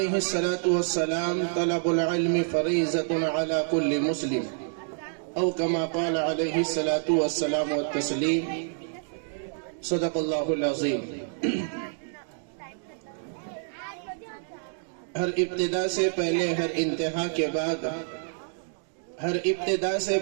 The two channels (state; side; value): silent; left; digital silence